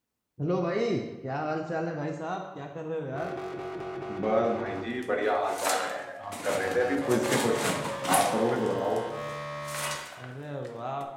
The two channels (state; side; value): identical; both; correlation 1.00